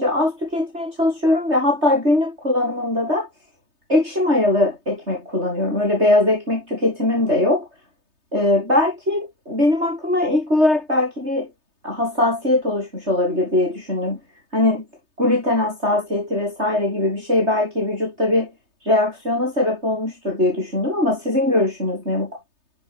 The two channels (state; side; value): late; left; 3.3 ms